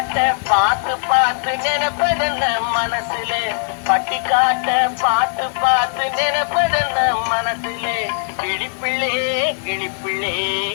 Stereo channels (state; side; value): silent; right; 67 dB below the other